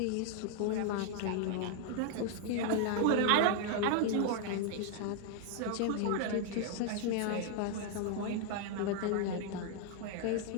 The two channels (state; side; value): different; both; correlation 0.00